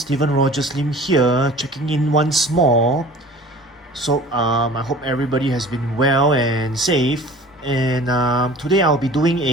Rogers Lim here, checking in once more. I hope everybody has been well and safe. And today I'll be doing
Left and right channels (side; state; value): both; normal; correlation 0.44